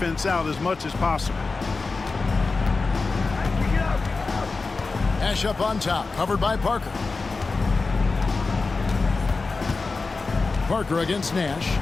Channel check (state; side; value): quieter; right; 4.0 dB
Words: out as much as possible. Nash up on top, covered by Parker. Parker against Nash.